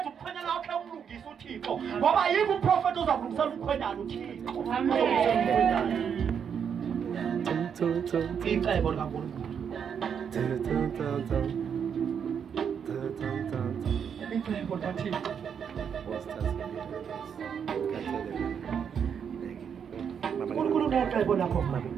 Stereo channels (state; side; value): quieter; left; 7.5 dB